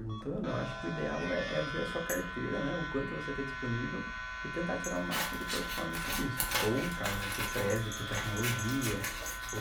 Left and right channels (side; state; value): both; identical; correlation 1.00